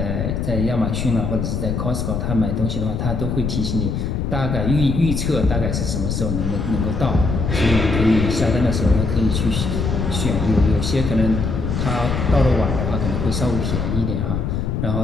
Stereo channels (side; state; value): left; noise; rumble, 1 dB below the sound